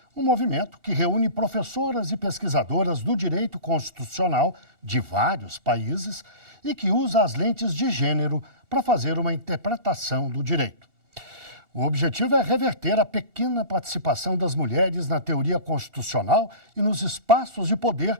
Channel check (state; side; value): late; left; 2.8 ms